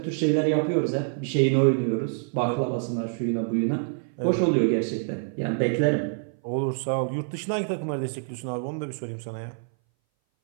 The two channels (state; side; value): silent; left; 59 dB below the other